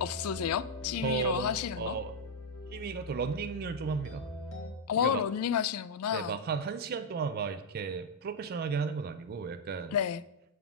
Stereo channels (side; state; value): both; normal; correlation -0.01